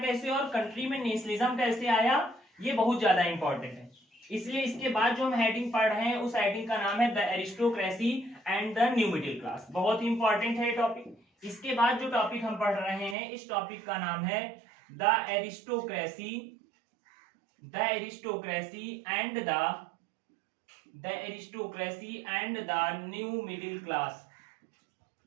कैसे और कंट्री में नेशनलिज्म कैसे आया, ये बहुत ज्यादा इंपॉर्टेंट है। इसलिए इसके बाद जो हम हेडिंग पढ़ रहे हैं, उस हेडिंग का नाम है the aristocracy and the new middle class. बहुत ही इंपॉर्टेंट है टॉपिक। इसके बाद जो टॉपिक हम पढ़ रहे हैं, इस टॉपिक का नाम है the aristocracy and the new middle class.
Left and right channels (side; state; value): left; drops out; at 13.2 s